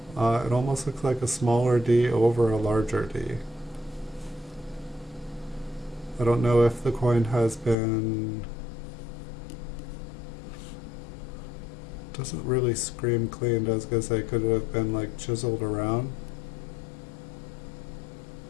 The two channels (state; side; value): drops out; right; at 7.8 s